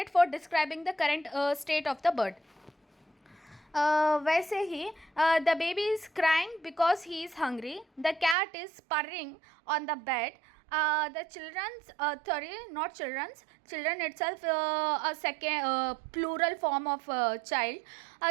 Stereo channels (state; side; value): drops out; left; at 8.3 s